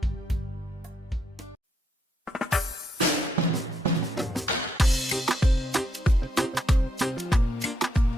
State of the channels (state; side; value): normal; both; correlation 0.77